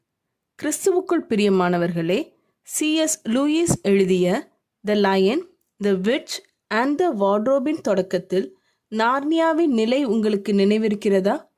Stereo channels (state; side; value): identical; both; correlation 1.00